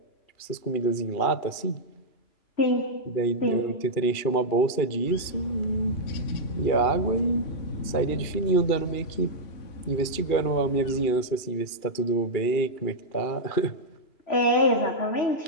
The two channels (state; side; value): late; right; 2.4 ms